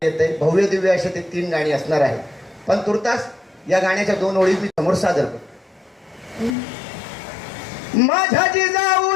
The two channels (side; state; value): right; drops out; at 6.6 s